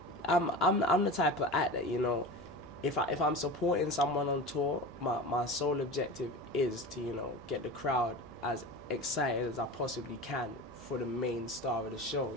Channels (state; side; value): noise; right; hum, 19 dB below the sound